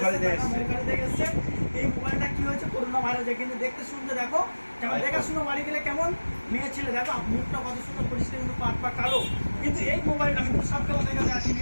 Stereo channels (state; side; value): inverted; both; correlation -1.00